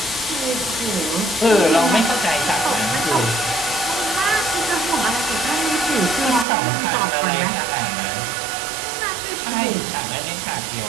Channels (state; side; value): drops out; left; at 6.5 s